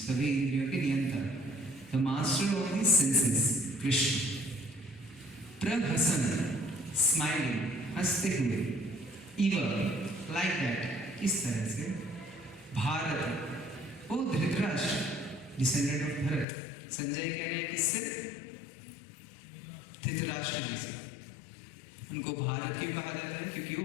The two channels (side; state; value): right; drops out; at 16.4 s